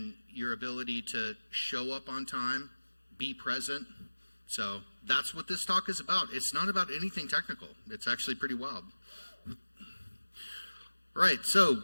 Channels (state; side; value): inverted; both; correlation -1.00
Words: your ability to show up on time, be present. So that's what this talk is about. It's not about anything technical. It's actually pretty wild. Right, so